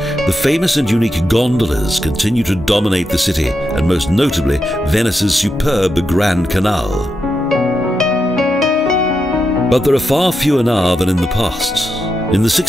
the famous and unique gondolas continue to dominate the city, and most notably Venice's superb Grand Canal. But there are far fewer now than in the past. In the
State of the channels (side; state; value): both; normal; correlation 0.86